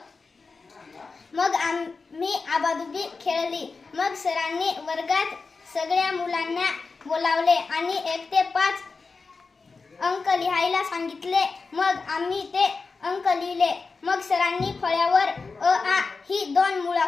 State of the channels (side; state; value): right; quieter; 4.3 dB